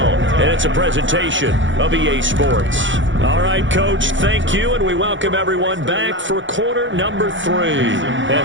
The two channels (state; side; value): late; left; 0.55 ms